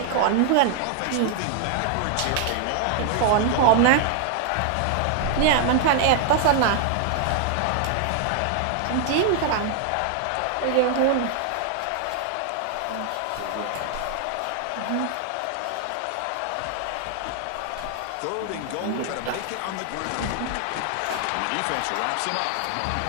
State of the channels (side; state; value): both; different; correlation 0.00